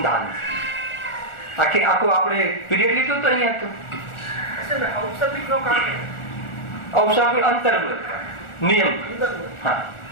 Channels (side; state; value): right; late; 1.4 ms